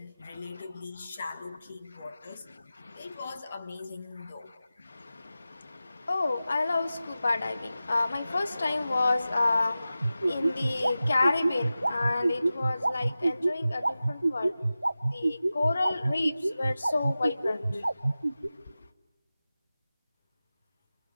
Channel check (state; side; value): inverted; both; correlation -0.95